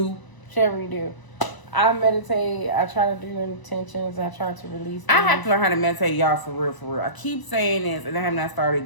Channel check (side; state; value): right; late; 1.0 ms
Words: Whichever you do. I meditate. I try to do intentions. I try to release things. I have to learn how to meditate, y'all, for real, for real. I keep saying this, and I have not